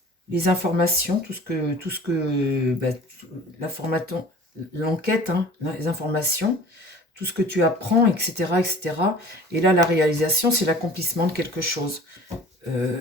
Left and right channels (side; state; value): both; normal; correlation 0.44